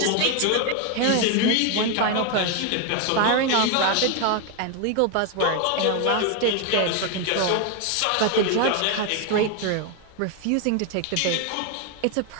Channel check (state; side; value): different; both; correlation 0.01